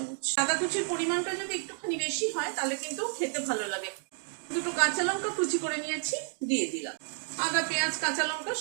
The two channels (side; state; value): left; silent; 57 dB below the other